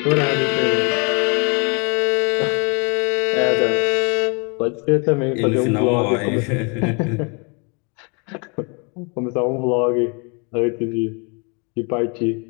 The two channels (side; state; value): right; quieter; 33.5 dB